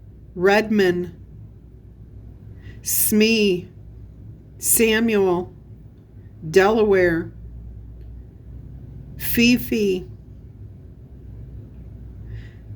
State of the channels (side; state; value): both; identical; correlation 1.00